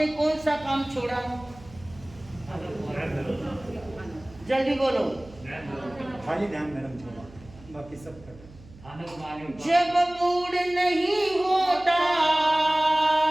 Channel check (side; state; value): right; noise; hum, 21 dB below the sound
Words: कौन सा काम छोड़ा? जल्दी बोलो। खाली ध्यान मैडम छोड़ा, बाकी सब कर। जब मूड नहीं होता,